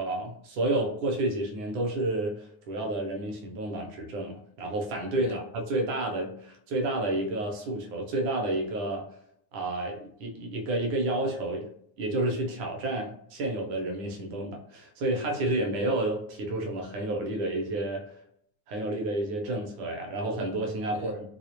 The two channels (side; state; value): left; late; 9.6 ms